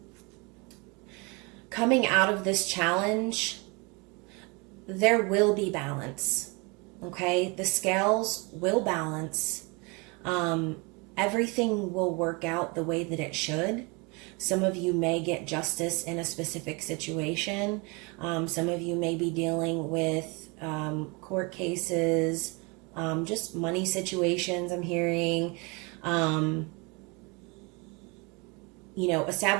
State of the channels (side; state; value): left; quieter; 29.3 dB